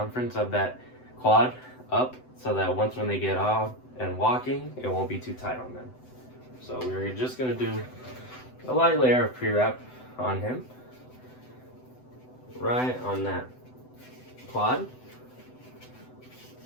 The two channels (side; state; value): right; late; 7.9 ms